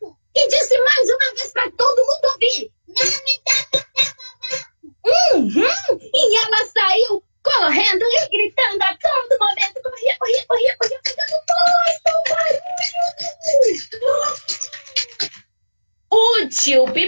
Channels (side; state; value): both; inverted; correlation -1.00